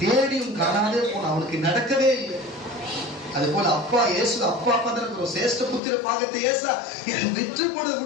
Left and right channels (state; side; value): drops out; right; at 5.8 s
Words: தேடியும் காணாதே போன, அவனுக்கு நடக்கவே இல்லை. அது போல அப்பா இயேசு அப்பா தான் சேஷ்ட புத்திர பாகத்தை ஏசா விற்று போட